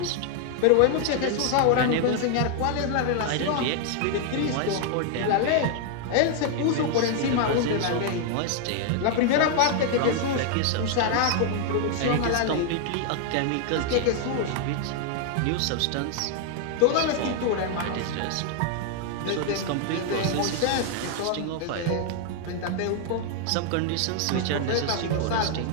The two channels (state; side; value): different; both; correlation 0.00